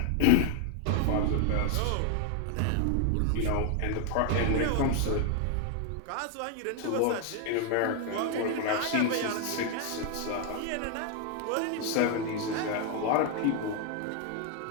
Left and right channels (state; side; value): different; both; correlation 0.00